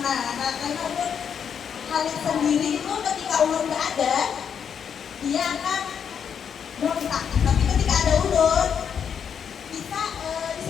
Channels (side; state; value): right; quieter; 7.6 dB